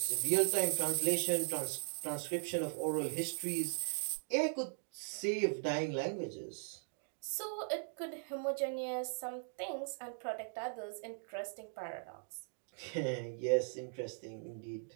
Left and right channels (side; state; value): left; silent; digital silence